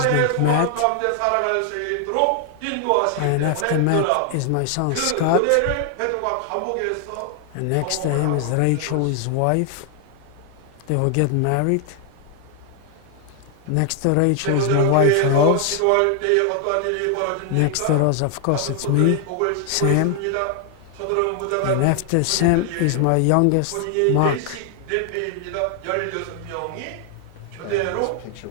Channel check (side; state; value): both; different; correlation 0.00